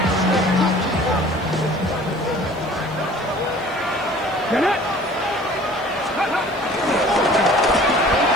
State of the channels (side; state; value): left; noise; hiss, 29 dB below the sound